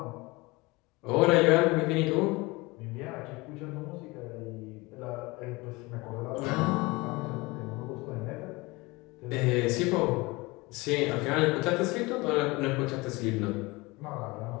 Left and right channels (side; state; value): right; quieter; 23.5 dB